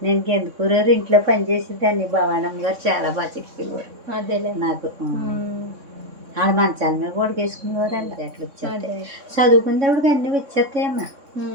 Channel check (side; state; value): left; late; 3.6 ms